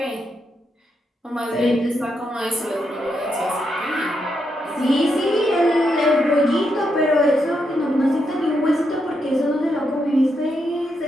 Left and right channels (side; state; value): both; normal; correlation 0.81